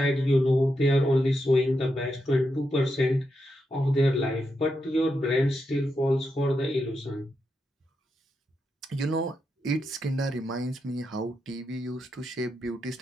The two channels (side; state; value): both; normal; correlation 0.85